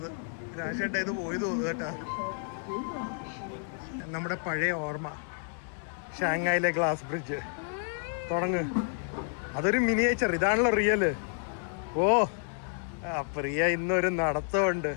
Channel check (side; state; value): right; silent; 58 dB below the other